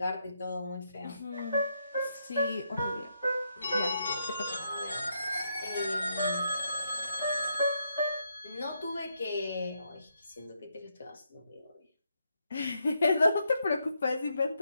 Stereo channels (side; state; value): both; inverted; correlation -0.80